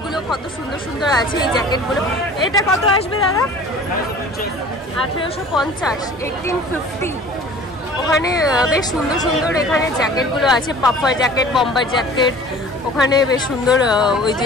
কত সুন্দর সুন্দর আছে। এই জ্যাকেটগুলো এটা কত আসবে দাদা? 1850, 1850। ওখানে বেশ সুন্দর সুন্দর এখানে জ্যাকেটগুলো আছে, পাফার জ্যাকেট, বম্বার জ্যাকেট। ওখানে বেশ সুন্দর ওই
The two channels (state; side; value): normal; both; correlation 0.45